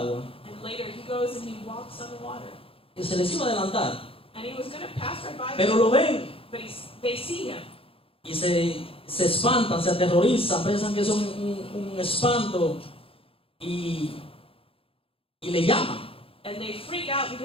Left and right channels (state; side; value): late; right; 0.27 ms